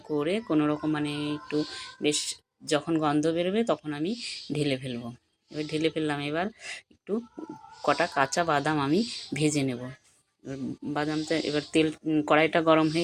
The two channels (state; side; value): identical; both; correlation 1.00